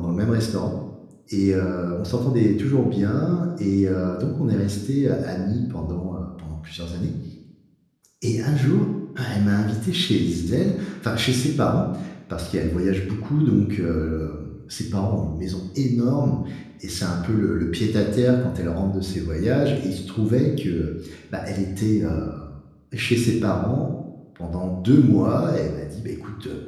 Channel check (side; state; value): both; identical; correlation 1.00